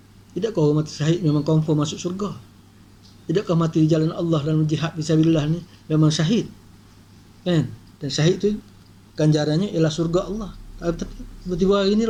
Tidakkah orang mati syahid memang confirm masuk syurga? Tidakkah mati di jalan Allah dan jihad fisabilillah ni memang syahid, kan? Dan syahid tu ganjarannya ialah surga Allah. Tapi tiba-tiba hari ini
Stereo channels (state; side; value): identical; both; correlation 1.00